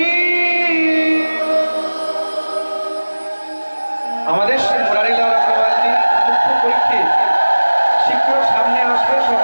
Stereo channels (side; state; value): both; inverted; correlation -1.00